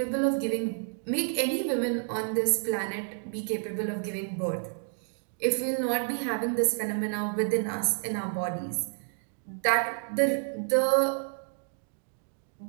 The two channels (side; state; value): left; silent; 58 dB below the other